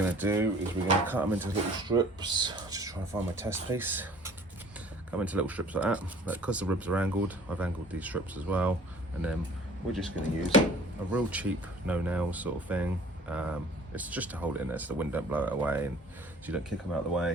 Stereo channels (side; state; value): both; normal; correlation 0.51